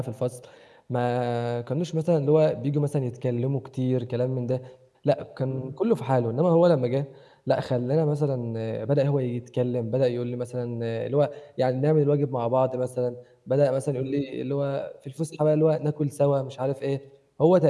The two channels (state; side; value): identical; both; correlation 1.00